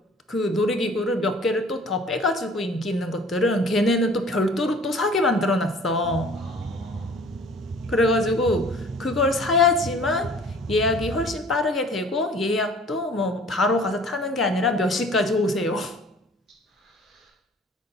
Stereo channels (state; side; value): normal; both; correlation 0.49